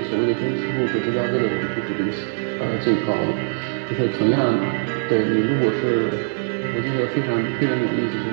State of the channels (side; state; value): left; silent; digital silence